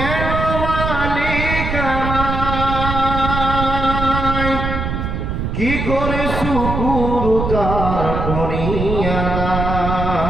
মালিক আমায় কি করে শুকুর তার করিয়া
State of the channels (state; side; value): noise; right; rumble, 3 dB below the sound